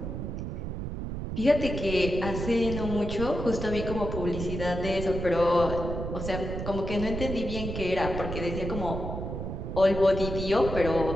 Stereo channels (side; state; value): right; noise; rumble, 5 dB below the sound